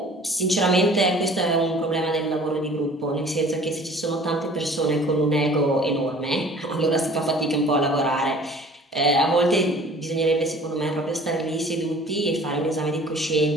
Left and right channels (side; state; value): both; normal; correlation 0.48